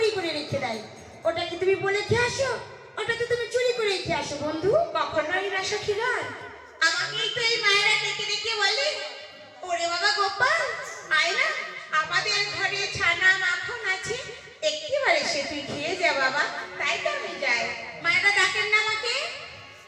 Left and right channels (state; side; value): identical; both; correlation 1.00